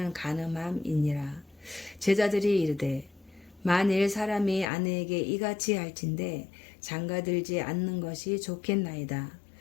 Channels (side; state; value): right; drops out; at 4.7 s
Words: 간음함이니라. 제자들이 이르되 만일 사람이 아내에게 이같이 할진대 장가들지 않는 것이 좋겠나이다.